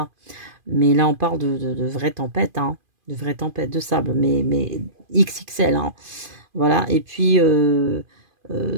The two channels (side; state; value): left; late; 2.5 ms